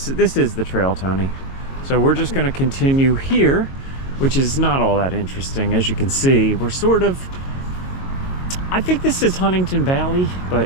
is the trail, Tony. So we're just going to continue here, which is not all that interesting. As you can see, we're sort of, I think this is Huntingdon Valley, but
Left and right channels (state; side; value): late; right; 22 ms